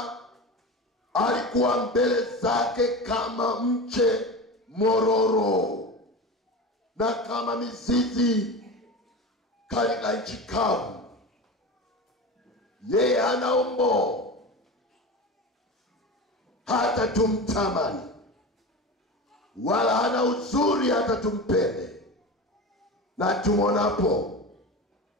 alikuwa mbele zake kama mche mororo na kama mizizi katika nchi kavu. Yeye hana umbo hata tumtamani, wala hana uzuri hata tumpende na tumonapo.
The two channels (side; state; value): both; normal; correlation 0.28